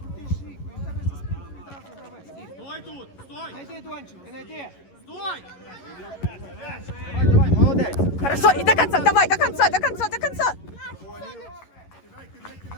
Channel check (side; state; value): right; late; 11 ms